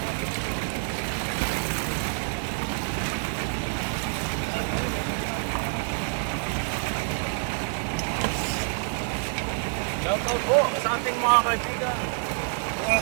Shoutout po sa ating mga kaibigan.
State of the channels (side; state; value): left; silent; 57 dB below the other